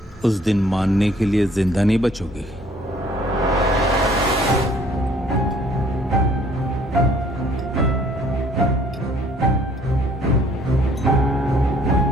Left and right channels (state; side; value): normal; both; correlation 0.59